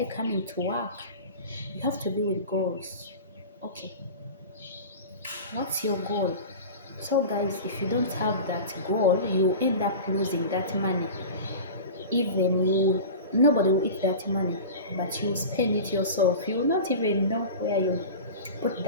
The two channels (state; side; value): inverted; both; correlation -0.32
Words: coming to work? You have to be with goals. Okay, what's your goal? So guys, if you don't have that goal, you end up losing that money. Even you, nobody will eat that money, but you spend it yourself. You will not even know where you put